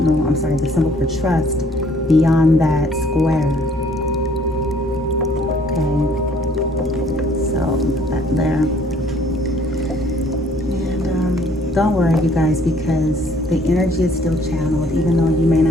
symbol for trust beyond that square. Okay, so put that there. And don't worry, you guys, because the energy is still channeled. Even though you may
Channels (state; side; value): normal; both; correlation 0.60